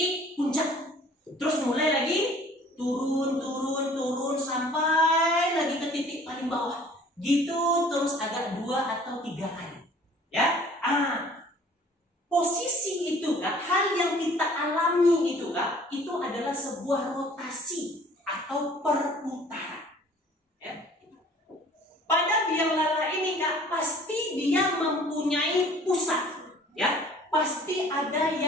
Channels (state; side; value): normal; both; correlation 0.52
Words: puncak. Terus mulai lagi turun sampai lagi ke titik paling bawah. Gitu terus agak 2 atau 3 kali. Ya. Posisi itu Kak, hal yang kita alami itu Kak, itu adalah sebuah rotasi atau perputaran. Ya. Pada biang lala ini Kak, pasti dia mempunyai pusat. Ya, pasti ada